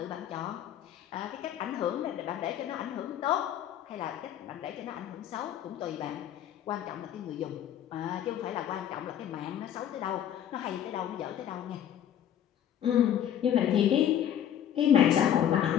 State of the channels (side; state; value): right; quieter; 10.3 dB